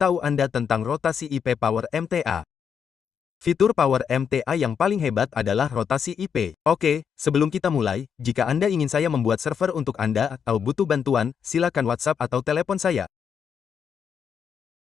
Anda tentang rotasi IP Power MTA. Fitur Power MTA yang paling hebat adalah rotasi IP. Oke, sebelum kita mulai, jika Anda ingin saya membuat server untuk Anda atau butuh bantuan, silakan WhatsApp atau telepon saya.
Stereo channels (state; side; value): quieter; right; 7.3 dB